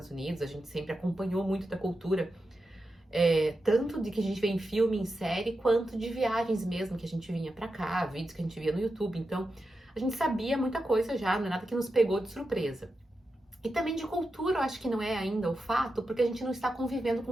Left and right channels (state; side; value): normal; both; correlation 0.89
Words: Unidos, a gente sempre acompanhou muito da cultura tanto de que a gente vê em filme, em série, quanto de viagens mesmo que a gente vinha pra cá, vídeos que a gente via no YouTube. Então, a gente sabia muita coisa já, não é nada que nos pegou de surpresa. E também de cultura, eu acho que não é ainda o fato, porque a gente não está convivendo